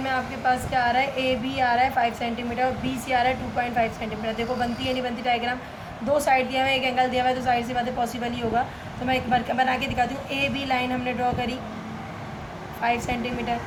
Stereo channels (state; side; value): identical; both; correlation 1.00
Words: आपके पास क्या आ रहा है, ए बी आ रहा है 5 सेंटीमीटर और बी सी आ रहा है 2.5 सेंटीमीटर। देखो बनती है नहीं बनती डायग्राम, दो साइड दिया हुआ है, एक एंगल दिया हुआ है, तो साइड से बातें पॉसिबल ही होगा। तो मैं एक बार बना के दिखाती हूँ। ए बी लाइन हमने ड्रॉ करी 5 सेंटीमीटर।